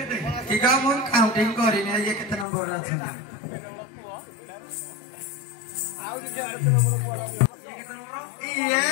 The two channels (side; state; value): right; drops out; at 2.5 s